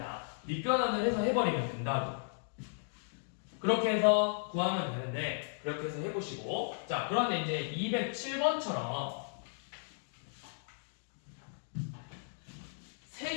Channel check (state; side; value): silent; right; digital silence